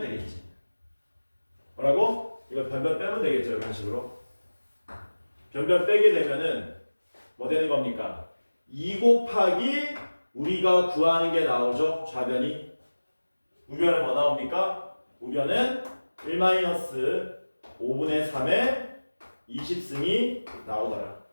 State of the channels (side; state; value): both; inverted; correlation -1.00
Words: 되겠지. 뭐라고? 이거 변변 빼면 되겠죠. 이런 식으로. 변변 빼게 되면은 뭐 되는 겁니까? 2 곱하기 우리가 구하는 게 나오죠. 좌변이. 우변은 뭐 나옵니까? 우변은 1-5분의 3의 20승이 나오더라.